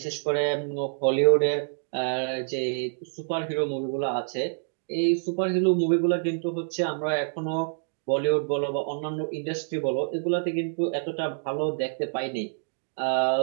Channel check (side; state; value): left; silent; digital silence